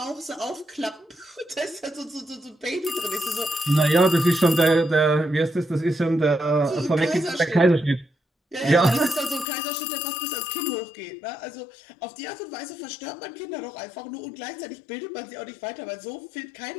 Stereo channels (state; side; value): drops out; right; at 9.5 s